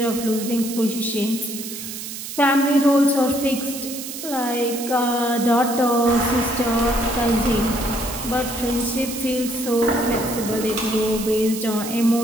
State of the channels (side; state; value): right; noise; hiss, 9 dB below the sound